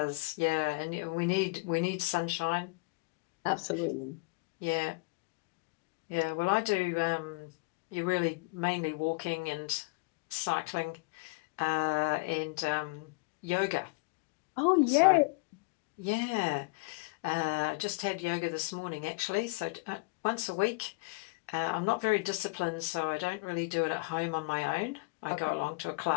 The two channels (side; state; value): right; quieter; 25.8 dB